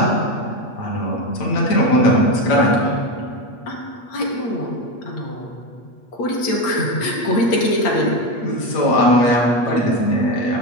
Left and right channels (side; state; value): right; late; 8.5 ms